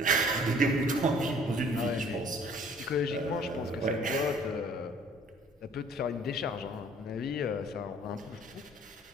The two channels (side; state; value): both; normal; correlation 0.54